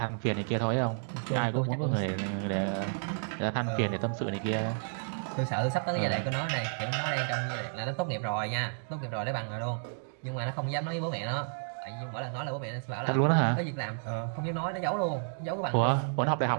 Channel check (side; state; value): left; silent; digital silence